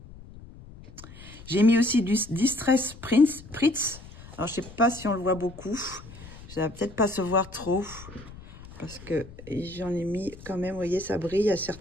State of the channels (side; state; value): left; noise; rumble, 18 dB below the sound